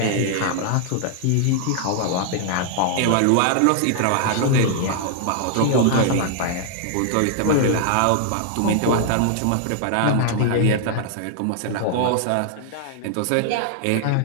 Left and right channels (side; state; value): both; different; correlation 0.00